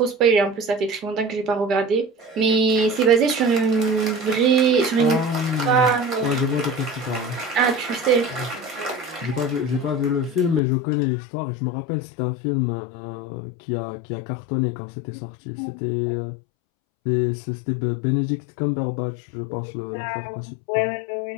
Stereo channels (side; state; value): right; drops out; at 10.6 s